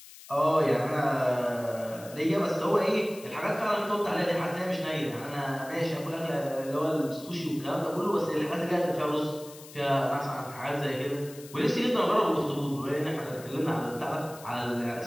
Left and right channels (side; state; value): left; noise; hiss, 18 dB below the sound